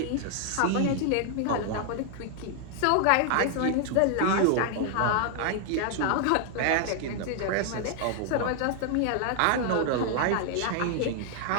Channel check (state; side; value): different; both; correlation 0.00